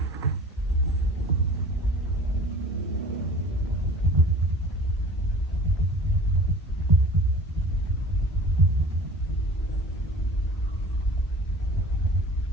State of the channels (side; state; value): both; normal; correlation 0.43